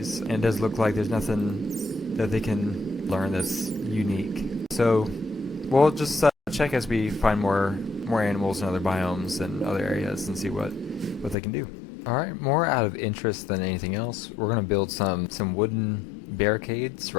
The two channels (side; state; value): right; drops out; at 11.4 s